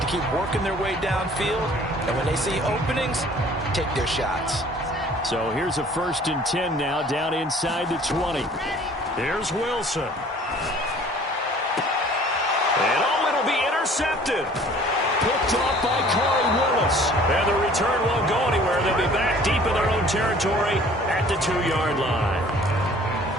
keep working their way downfield. And when they see openings, take their shots. So here's a 1st and 10 now down inside the 20. Here's Wilson. And it'll be intercepted. Picked off by Corey Willis. And the return won't go anywhere. They'll be back deep in their own territory at the 2-yard line.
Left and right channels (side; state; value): both; normal; correlation 0.51